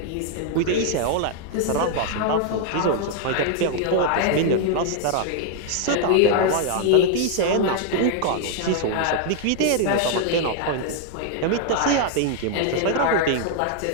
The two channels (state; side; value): different; both; correlation 0.00